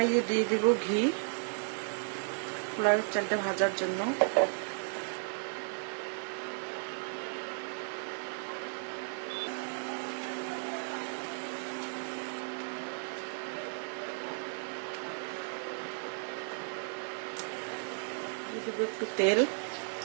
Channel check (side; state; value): left; silent; digital silence